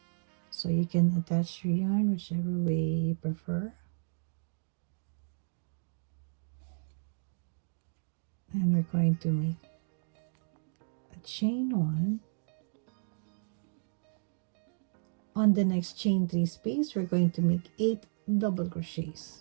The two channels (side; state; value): left; silent; digital silence